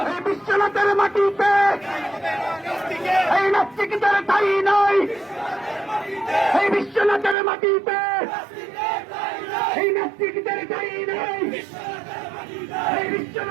বিশ্বনাথের মাটিতে এই নাস্তিকদের ঠাঁই নাই, এই বিশ্বনাথের মাটিতে নাস্তিকদের ঠাঁই নেই এই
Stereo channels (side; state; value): left; drops out; at 7.4 s